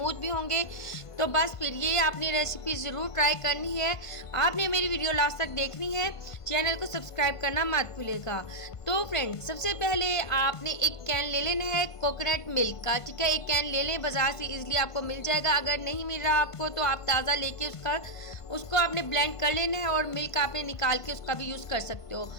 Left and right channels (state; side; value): late; right; 1.5 ms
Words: भी होंगे। तो बस फिर ये आपने रेसिपी ज़रूर ट्राई करनी है। आपने मेरी वीडियो लास्ट तक देखनी है, चैनल को सब्सक्राइब करना मत भूलिएगा। तो फ्रेंड्स, सबसे पहले आपने एक कैन ले लेना है कोकोनट मिल्क का, ठीक है। एक कैन ले लें, बाज़ार से इजीली आपको मिल जाएगा। अगर नहीं मिल रहा आपको तो आप ताज़ा लेके उसको आपने ब्लेंड कर लेना है और मिल्क आपने निकाल के उसका भी यूज़ कर सकते हो।